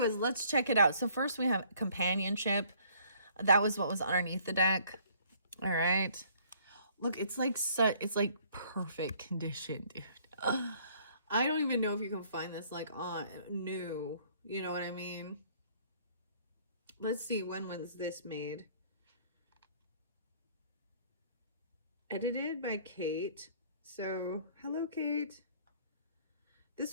let's check it out. So first we have companionship. That was what was underneath the deck. All right. Look, it's like perfect condition, dude. I don't even know if you can find this like on new. You know what I mean? Let's see, when was this made? Edited by Kate. So, hello, Kate.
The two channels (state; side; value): inverted; both; correlation -0.60